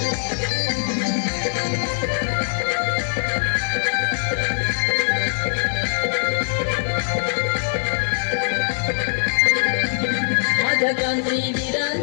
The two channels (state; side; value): silent; right; digital silence